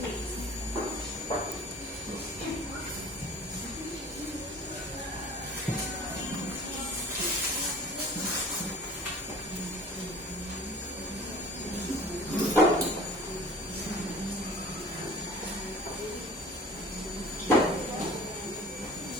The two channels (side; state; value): both; normal; correlation 0.45